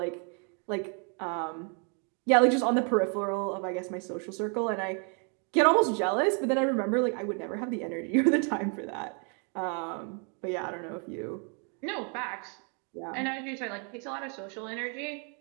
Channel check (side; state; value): left; quieter; 38.3 dB